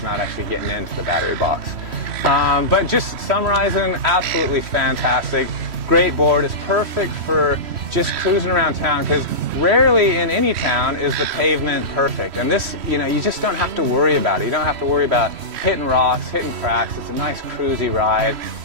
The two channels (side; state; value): left; late; 3.1 ms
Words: not actually getting into the battery box. But just summarizing, absolutely fantastic. Great board. It's perfect for just cruising around town because rarely in any town is the pavement perfect. And this, you know, you just don't have to worry about it. You don't have to worry about hitting rocks, hitting cracks. It's a nice cruisy ride.